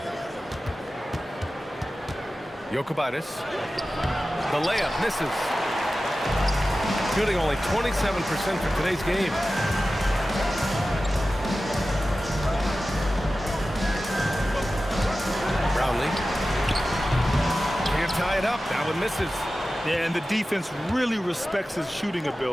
Jokubaitis. The layup misses. Shooting only 27% for today's game. Brownlee. Can't tie it up. That one misses. Yeah, and the defense really respects his shooting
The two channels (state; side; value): normal; both; correlation 0.95